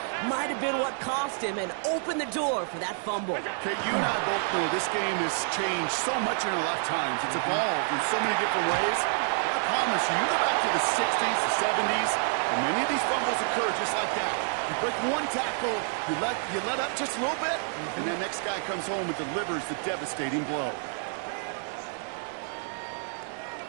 might have been what cost him and opened the door for that fumble. Okay, you and I both know this game has changed so much in our lifetimes. It's evolved in so many different ways. But I promise you, you go back to the 60s, the 70s, and many of these fumbles occur just like that. You break one tackle, you let up just a little bit, and the next guy comes home and delivers the devastating blow.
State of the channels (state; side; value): silent; left; 59 dB below the other